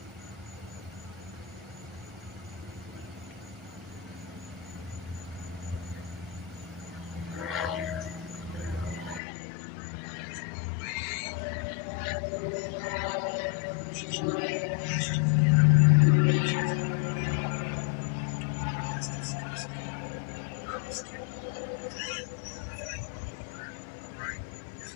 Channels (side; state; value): right; drops out; at 9.2 s